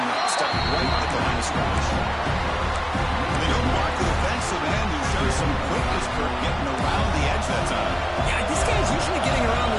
route, stuck right at the line of scrimmage. They don't block the defensive end who shows some quickness for getting around the edge that time. Yeah, this guy's usually getting around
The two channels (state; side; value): identical; both; correlation 1.00